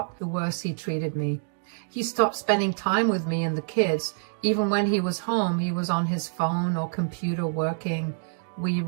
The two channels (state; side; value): silent; left; digital silence